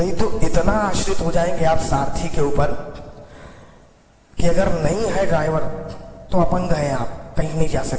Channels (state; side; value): identical; both; correlation 1.00